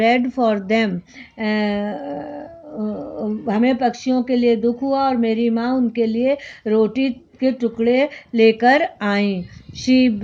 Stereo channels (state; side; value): identical; both; correlation 1.00